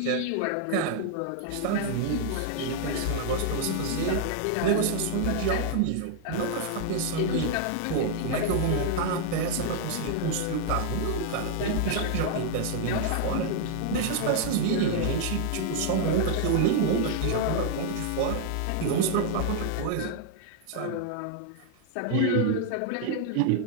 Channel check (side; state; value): both; different; correlation 0.00